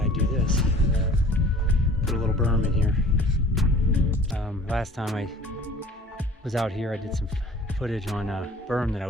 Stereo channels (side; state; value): both; normal; correlation 0.48